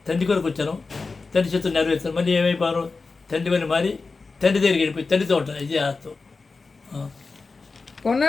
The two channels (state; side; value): quieter; right; 4.1 dB